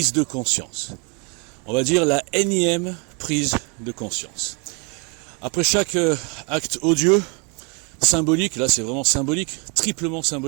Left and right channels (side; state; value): left; quieter; 33.6 dB